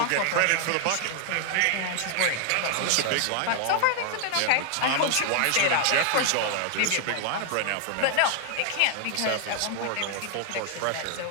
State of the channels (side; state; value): both; different; correlation 0.00